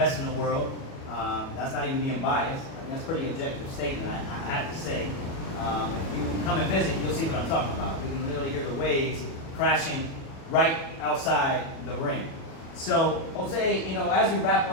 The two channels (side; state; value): right; late; 37 ms